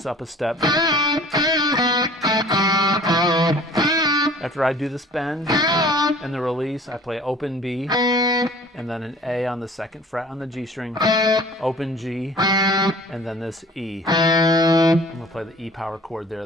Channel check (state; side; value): normal; both; correlation 0.48